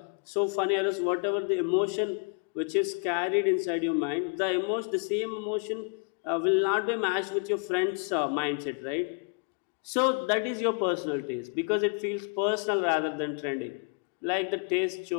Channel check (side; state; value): right; quieter; 37.8 dB